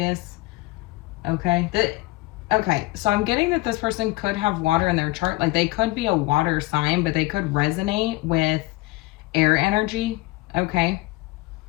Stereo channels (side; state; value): right; quieter; 20.8 dB